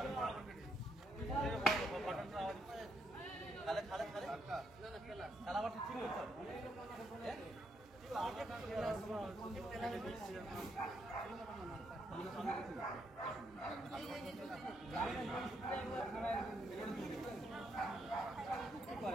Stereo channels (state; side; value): normal; both; correlation 0.76